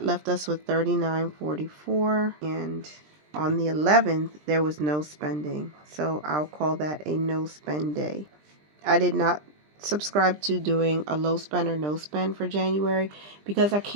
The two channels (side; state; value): left; late; 20 ms